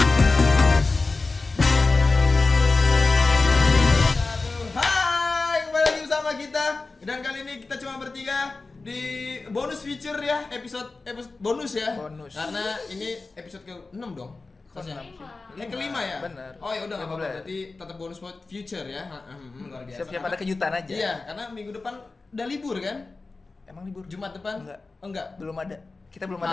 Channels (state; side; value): quieter; right; 3.7 dB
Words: Hai, kembali lagi bersama kita. Dan kali ini kita cuma bertiga di bonus feature ya, episode bonus ya. Bonus. Karena ini episode ke-6 dong. Kelima ya? Bener. Oh ya udah enggak apa-apa, 15. berarti tetap bonus buat future ya. Luar biasa. Siap-siap ada kejutan aja. Iya, karena minggu depan udah libur kan? Emang libur? Jumat depan? Enggak. Oh, enggak. Belum ada. Kita belum